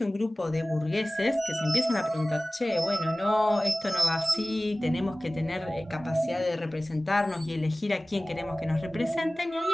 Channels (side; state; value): both; normal; correlation 0.98